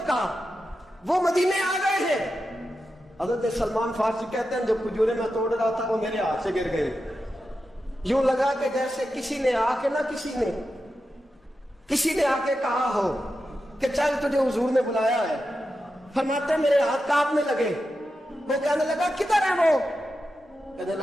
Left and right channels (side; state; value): both; normal; correlation 0.90